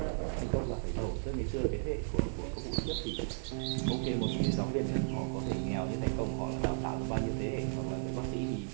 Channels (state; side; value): silent; left; 55 dB below the other